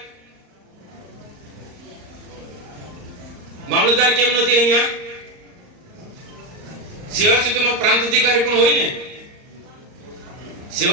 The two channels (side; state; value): left; late; 38 ms